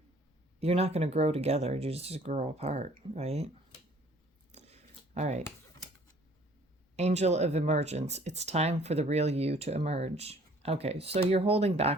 you're not going to grow together. You just grow apart, right? All right. Angel of emergence. It's time for the real you to emerge. Okay, so you're holding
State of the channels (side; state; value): both; normal; correlation 0.56